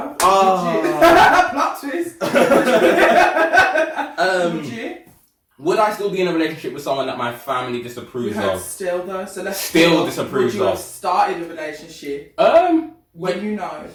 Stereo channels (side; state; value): both; identical; correlation 1.00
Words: Plot twist. Would you? Would I still be in a relationship with someone that my family disapproves of? Still though, so let's still disapproves of. Would you have of. started a relationship when you know